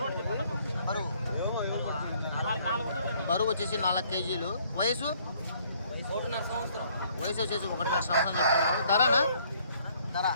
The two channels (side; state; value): both; inverted; correlation -0.63